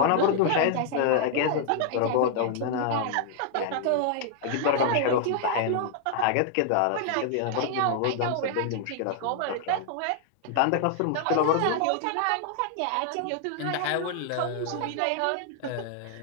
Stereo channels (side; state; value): both; different; correlation 0.00